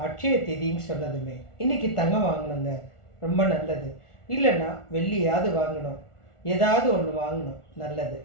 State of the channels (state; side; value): late; right; 1.4 ms